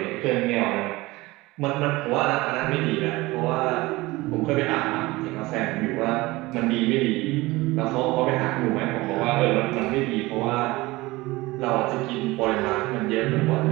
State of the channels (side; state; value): left; quieter; 20.7 dB